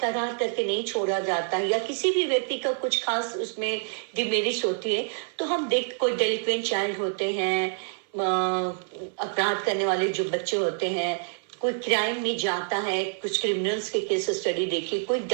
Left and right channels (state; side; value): silent; left; 60 dB below the other